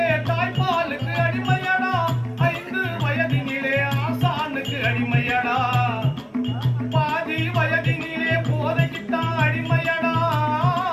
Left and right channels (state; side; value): identical; both; correlation 1.00